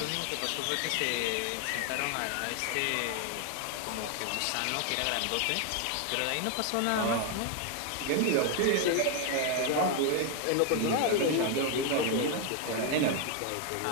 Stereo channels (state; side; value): different; both; correlation 0.01